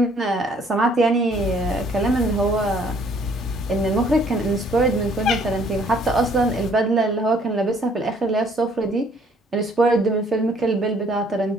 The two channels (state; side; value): normal; both; correlation 0.61